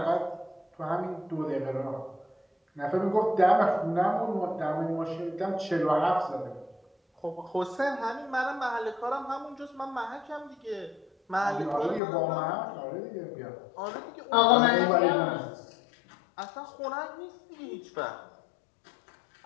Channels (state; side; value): drops out; right; at 12.0 s